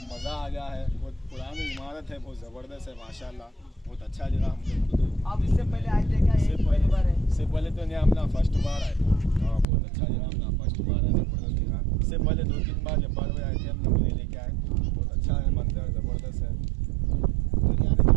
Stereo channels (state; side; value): drops out; left; at 9.7 s